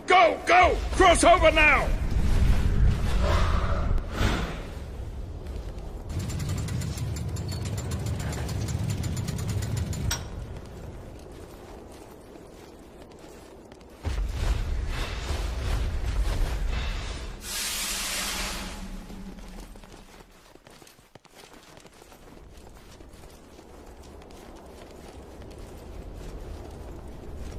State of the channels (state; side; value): identical; both; correlation 1.00